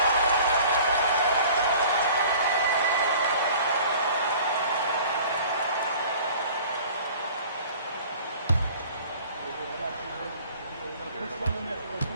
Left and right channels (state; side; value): inverted; both; correlation -0.47